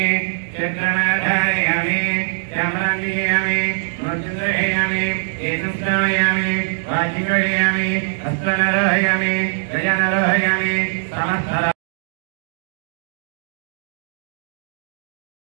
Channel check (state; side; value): silent; left; digital silence